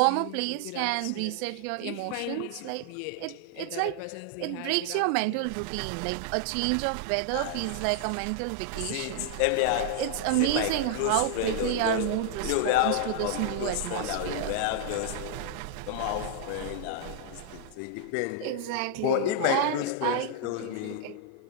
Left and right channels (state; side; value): different; both; correlation -0.01